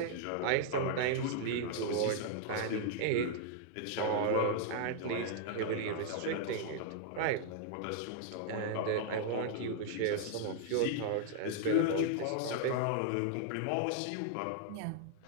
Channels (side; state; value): both; different; correlation -0.01